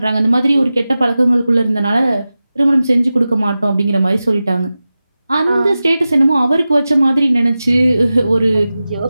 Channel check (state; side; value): inverted; both; correlation -0.95